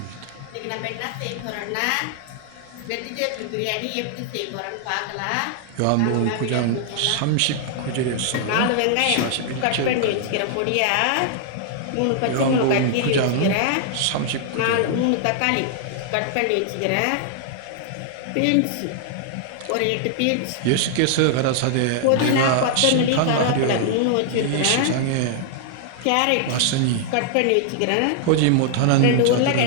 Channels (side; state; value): both; different; correlation -0.01